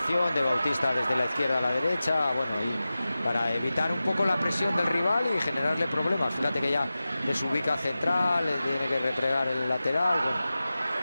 de Bautista desde la izquierda a la derecha, bueno, y para evitar un poco la presión del rival y generarle problemas. Fíjate que ya desubica central, tiene que replegar el lateral.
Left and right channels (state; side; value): inverted; both; correlation -0.95